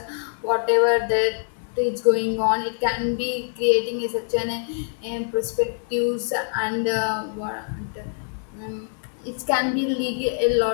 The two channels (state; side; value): silent; right; 62 dB below the other